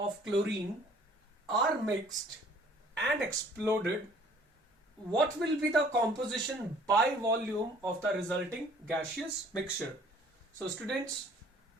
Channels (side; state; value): both; normal; correlation 0.56